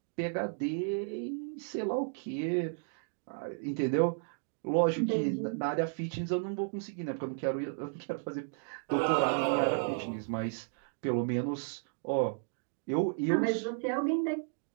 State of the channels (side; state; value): left; silent; digital silence